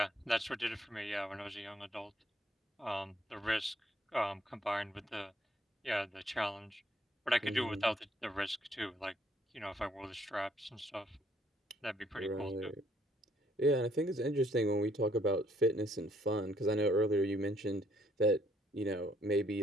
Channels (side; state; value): both; normal; correlation 0.67